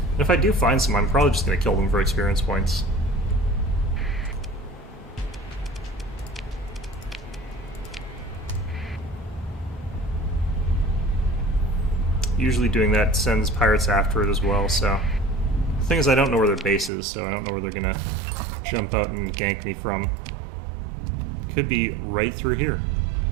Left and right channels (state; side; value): drops out; left; at 16.9 s